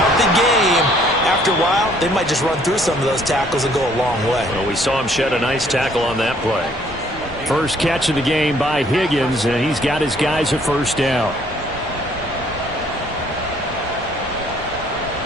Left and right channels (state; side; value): noise; left; rumble, 17 dB below the sound